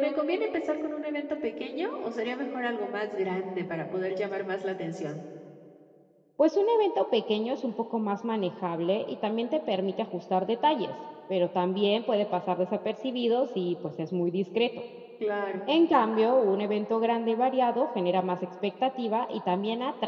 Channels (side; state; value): both; identical; correlation 1.00